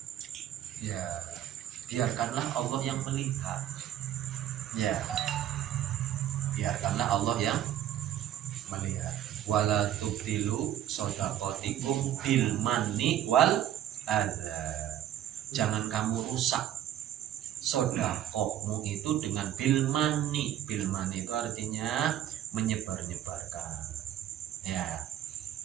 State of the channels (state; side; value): quieter; left; 11.2 dB